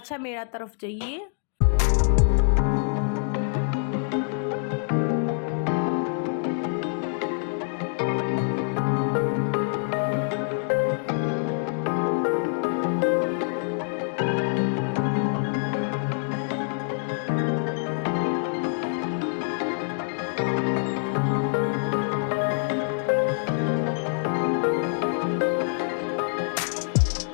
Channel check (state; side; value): silent; right; 58 dB below the other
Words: મેળા તરફ જઈએ.